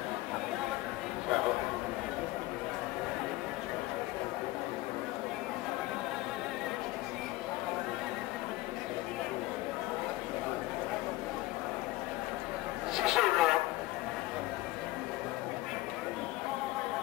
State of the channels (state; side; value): quieter; right; 18.5 dB